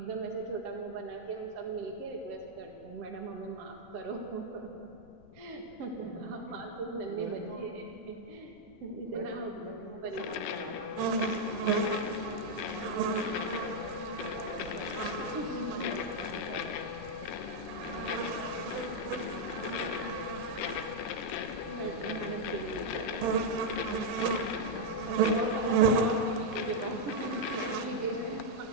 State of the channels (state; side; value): noise; left; rumble, 24 dB below the sound